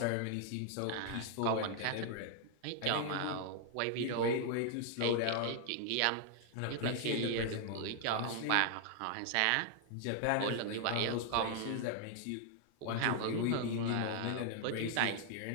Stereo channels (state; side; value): different; both; correlation 0.00